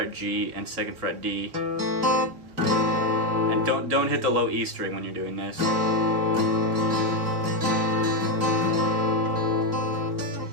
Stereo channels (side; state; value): left; late; 3.3 ms